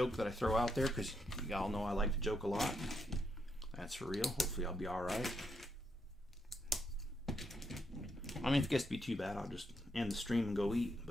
that I throw out there, because y'all know I like to joke a lot. That's for real. Hopefully I'll be alright. I mean, if it gets to be too bad, I'll just end the stream and go eat,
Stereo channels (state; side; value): normal; both; correlation 0.80